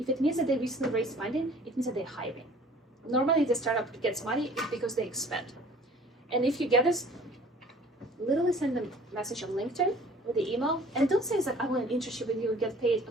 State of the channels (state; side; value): normal; both; correlation 0.51